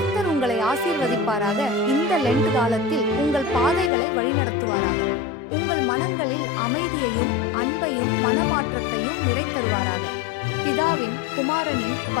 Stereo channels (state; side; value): drops out; right; at 3.9 s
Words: உங்களை ஆசீர்வதிப்பாராக. இந்த லென்ட் காலத்தில் உங்கள் பாதைகளை வழிநடத்துவாராக. உங்கள் மனங்களில் அமைதியையும் அன்பையும் மனமாற்றத்தையும் நிறைத்தருவாராக. பிதாவின், குமாரனின்,